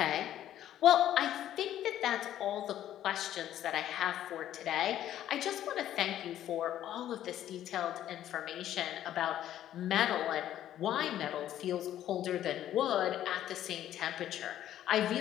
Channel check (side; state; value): right; quieter; 11.9 dB